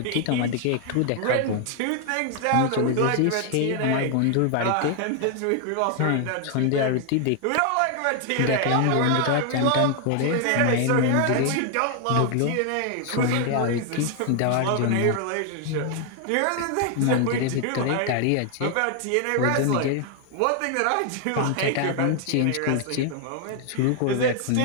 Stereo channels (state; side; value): different; both; correlation 0.00